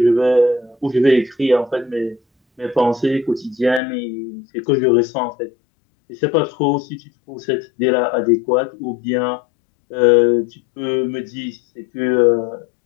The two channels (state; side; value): drops out; right; at 3.8 s